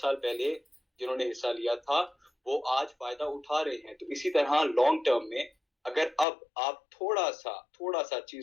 पहले जिन्होंने हिस्सा लिया था वो आज फायदा उठा रहे हैं। तो इसी तरह लॉन्ग टर्म में अगर अब आप थोड़ा सा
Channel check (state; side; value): drops out; right; at 6.2 s